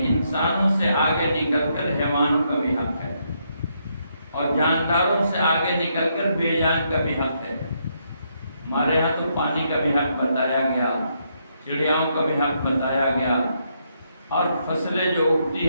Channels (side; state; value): both; inverted; correlation -0.76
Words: انسانوں سے آگے نکل کر حیوانوں کا بھی حق ہے، اور جانداروں سے آگے نکل کر بے جان کا بھی حق ہے۔ ہمارے ہاں تو پانی کا بھی حق بتایا گیا، چڑیاؤں کا بھی حق بتایا گیا، اور فصلیں جو اگتی